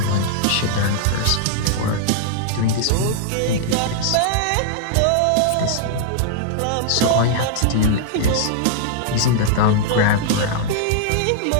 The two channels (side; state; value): both; different; correlation -0.01